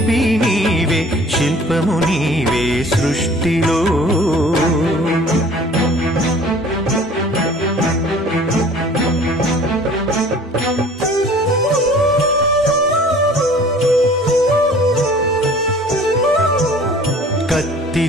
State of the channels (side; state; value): both; normal; correlation 0.49